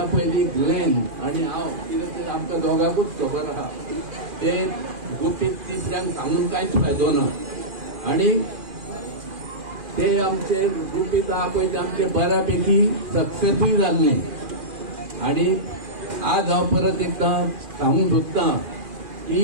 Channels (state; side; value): late; left; 2.4 ms